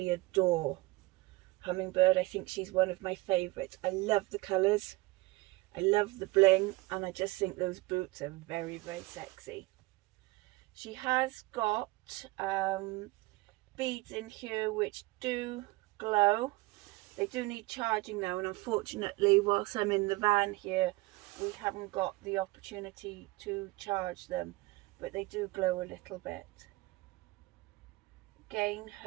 adore Hummingbird. I think she's one of my favorites. I love the colors, I love the bling, and I just think those boots are very, very sexy. She has got beads in here which do glow. They do need charging now, and unfortunately whilst I'm in the van here we haven't got the opportunity to charge them, but they do glow a little bit. Again,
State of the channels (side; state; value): left; quieter; 21.6 dB